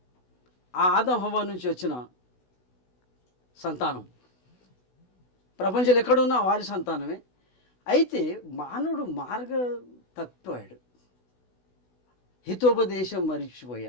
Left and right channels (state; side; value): late; right; 16 ms